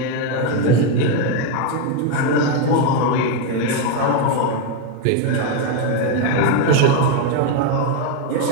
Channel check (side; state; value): both; different; correlation 0.02